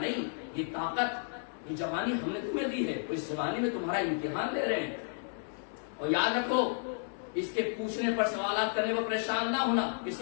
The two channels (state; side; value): silent; right; digital silence